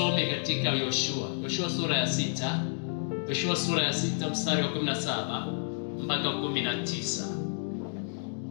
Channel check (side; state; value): right; silent; digital silence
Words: katika Yoshua sura ya 6. Yoshua sura ya 6 mstari wa 17 mpaka 19.